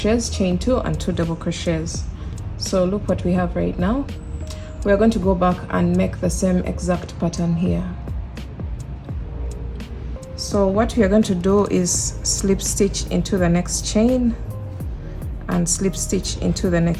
chain 2 and 2 double crochets. So look what we have right now. We are going to go back and make the same exact pattern here. So what we are going to do is slip stitch into the next chain and slip stitch into the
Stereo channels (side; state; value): both; identical; correlation 1.00